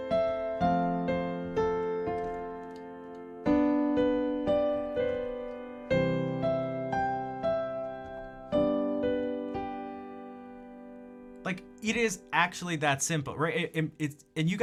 Like, it is actually that simple, right? And you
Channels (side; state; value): both; identical; correlation 1.00